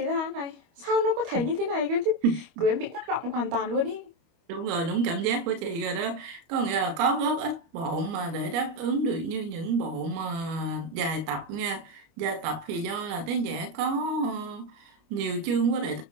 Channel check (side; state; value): left; late; 25 ms